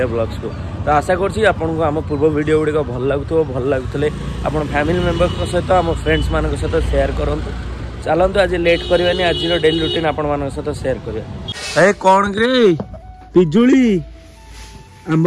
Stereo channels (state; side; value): identical; both; correlation 1.00